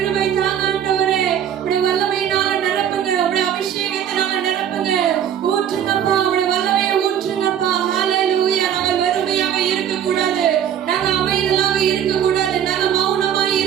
தாங்க ஆண்டவரே. உடைய வல்லமையினால நிரப்புங்க, உடைய அபிஷேகத்தினால நிரப்புங்க, ஊற்றுங்கப்பா, உடைய வல்லமையை ஊற்றுங்கப்பா. ஹல்லேலூயா. நாங்கள் வெறுமையாக இருக்க கூடாது, நாங்க அமைதலாக இருக்க கூடாது, நாங்க மௌனமாய்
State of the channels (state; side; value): quieter; left; 9.4 dB